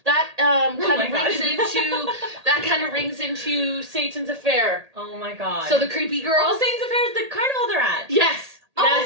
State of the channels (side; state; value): left; late; 1.8 ms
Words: that kind of rings into Satan's Affair. Oh my God. So the creepy girl. Oh, Satan's Affair is the carnival they're at. Yes. Oh